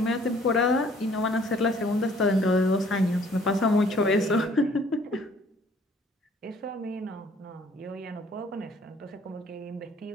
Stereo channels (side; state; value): both; normal; correlation 0.58